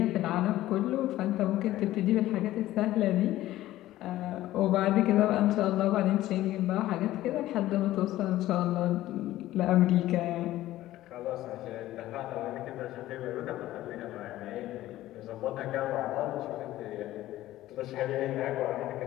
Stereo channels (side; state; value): right; quieter; 15.0 dB